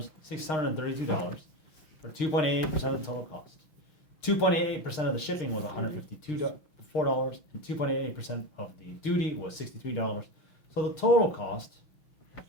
$632, for 2.88% of the total cost. 2.88% of the shipping was $154, and 2.88% of the duty was $63. So the total cost,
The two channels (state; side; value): late; right; 6.5 ms